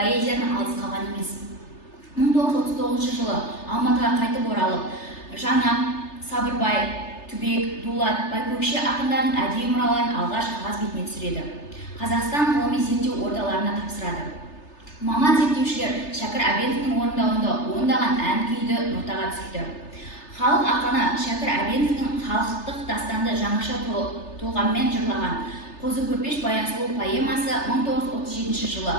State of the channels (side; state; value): right; late; 3.3 ms